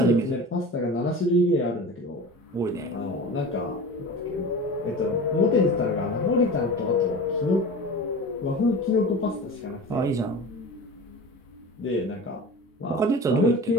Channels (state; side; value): normal; both; correlation 0.34